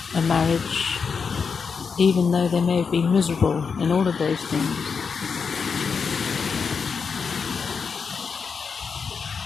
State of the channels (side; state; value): right; quieter; 5.7 dB